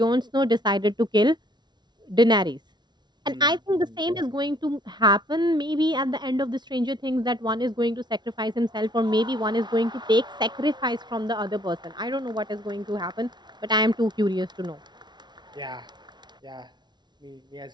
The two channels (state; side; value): late; left; 0.21 ms